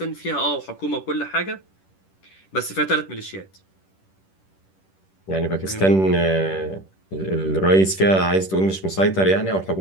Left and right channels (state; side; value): late; right; 10 ms